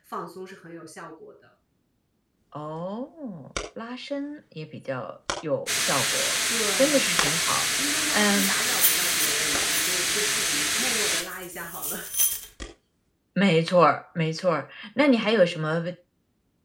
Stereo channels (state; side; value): identical; both; correlation 1.00